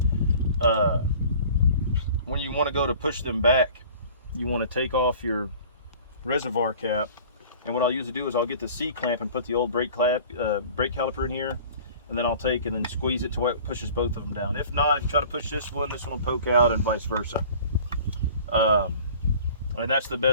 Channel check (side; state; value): both; inverted; correlation -0.46